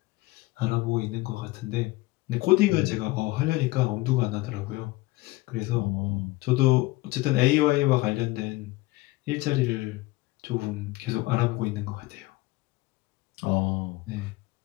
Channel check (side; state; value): right; quieter; 20.5 dB